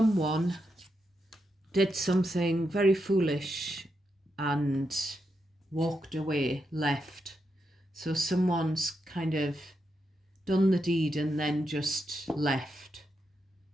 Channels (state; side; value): normal; both; correlation 0.84